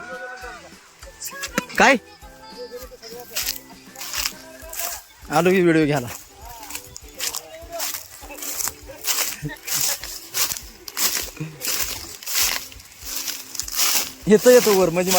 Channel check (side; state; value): both; identical; correlation 1.00